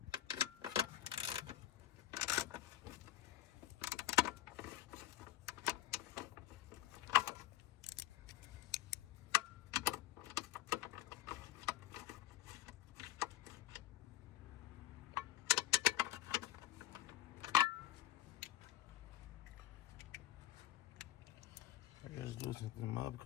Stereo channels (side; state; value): right; quieter; 13.6 dB